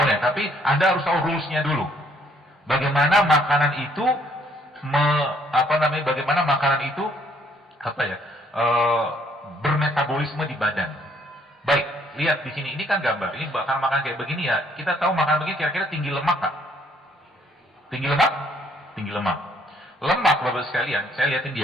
tapi Anda harus tahu rules-nya dulu. Bagaimana makanan itu bagaimana makanan itu bermetabolisme di badan. Baik, lihat di sini, ini kan gambar. Ini bakal makan kayak begini ya. Kita tahu makan begini kira-kira tinggi lemak Pak. Tinggi lemak? Tinggi lemak. Lemak Bapak sekalian, saya lihatin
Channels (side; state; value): both; normal; correlation 0.65